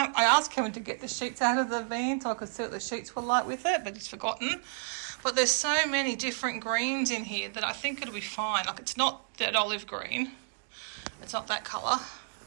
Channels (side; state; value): left; silent; digital silence